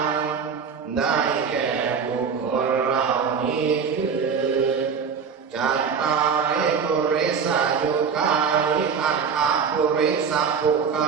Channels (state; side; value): quieter; left; 6.3 dB